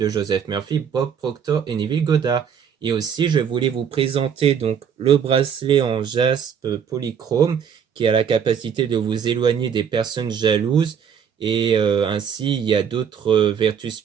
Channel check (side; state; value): left; quieter; 7.6 dB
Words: Joseph Murphy, Bob Proctor et Neville Goddard. Et aussi, je voulais vous présenter donc le bracelet en jaspe polychrome qui a la capacité de vous éloigner des personnes jalouses. Et ainsi, il y a d'autres vertus